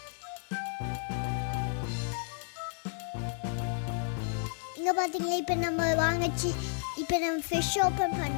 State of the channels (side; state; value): right; silent; digital silence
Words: இங்கே பார்த்தீங்களா இப்போ நம்ம வாங்கிச்சு. இப்போ நம்ம ஃபிஷ் ஓப்பன்